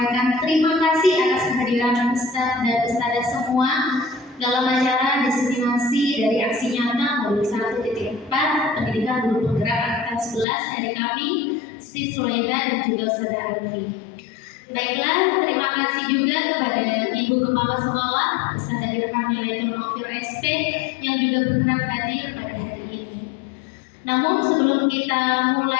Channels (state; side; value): drops out; right; at 10.5 s